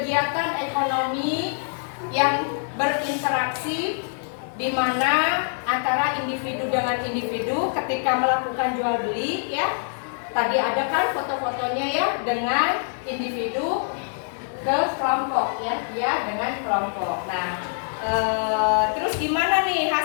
ekonomi yang berinteraksi di mana antara individu dengan individu ketika melakukan jual beli ya. Tadi ada kan foto-fotonya ya dengan individu ke kelompok ya, dia dengan kelompok. Nah, terus gimana nih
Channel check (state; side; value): silent; right; 62 dB below the other